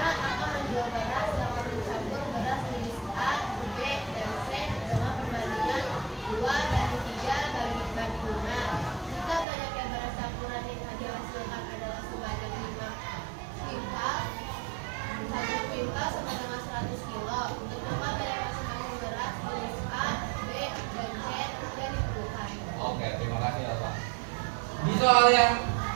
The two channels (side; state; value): left; drops out; at 9.5 s